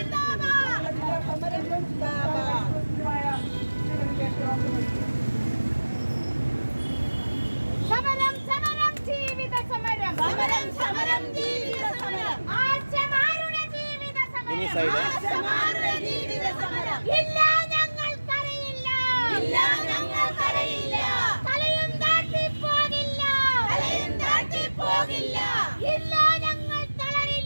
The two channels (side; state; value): both; inverted; correlation -1.00